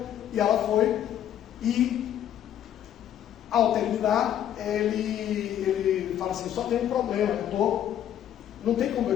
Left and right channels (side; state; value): right; quieter; 10.6 dB